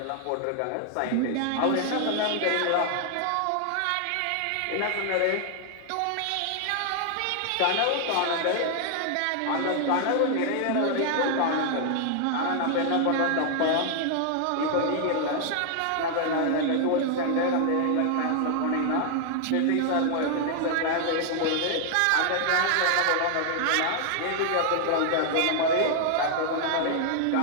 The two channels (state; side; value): different; both; correlation 0.00